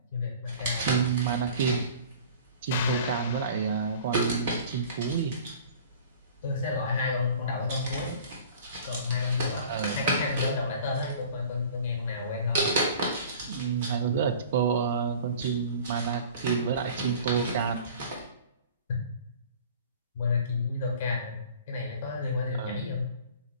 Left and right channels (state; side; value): inverted; both; correlation -0.44